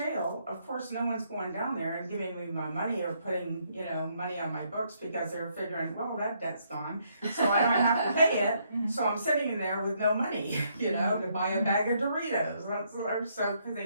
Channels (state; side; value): inverted; both; correlation -0.72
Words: of course, no one's going down there and giving me my money or putting, money on my books, because they're figuring, well, that debt's gone, so I don't have to pay it. So I'm sitting in there with no money, to buy a bag of Doritos. So, because